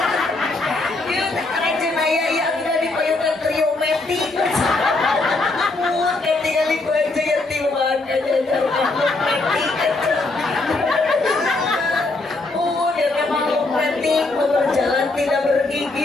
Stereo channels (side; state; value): right; quieter; 3.2 dB